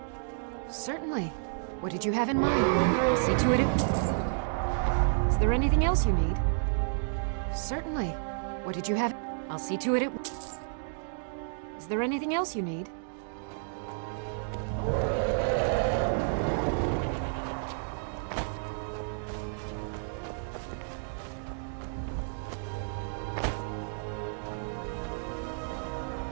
Certainly. What did you have in mind? I'll see to it. Is there anything else you need? Certainly. What did you have? I'll see to it. Is there anything else you need?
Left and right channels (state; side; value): silent; left; digital silence